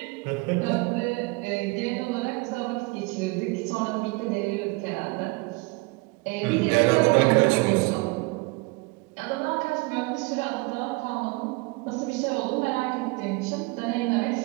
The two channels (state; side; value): quieter; left; 26.2 dB